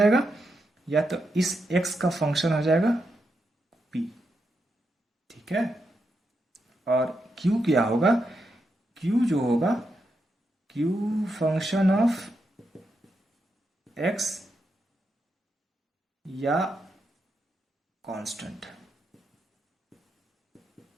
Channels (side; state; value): both; normal; correlation 0.84